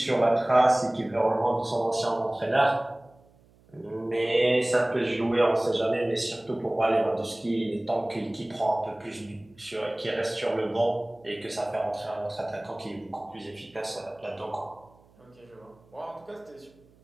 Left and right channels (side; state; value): right; noise; hum, 30 dB below the sound